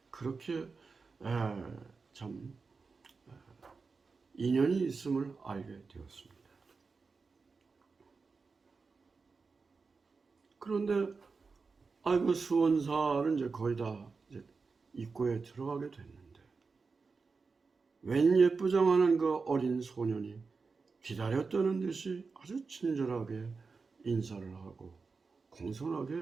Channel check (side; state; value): left; quieter; 4.6 dB